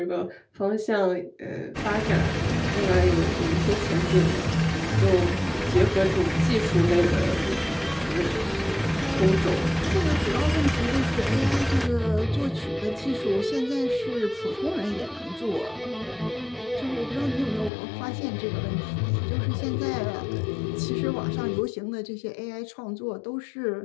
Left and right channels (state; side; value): drops out; right; at 17.7 s